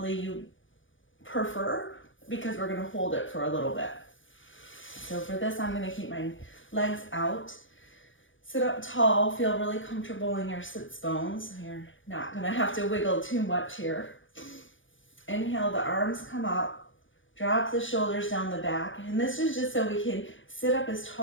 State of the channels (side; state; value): right; late; 0.56 ms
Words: you prefer, because we're going to hold it for a little bit. So for this, I'm going to keep my legs out. Sit up tall, feel really comfortable in your sits bones. You're not going to have to wiggle too much here. Inhale, the arms come up, drop the shoulders down the back. And this is just so we can sit up as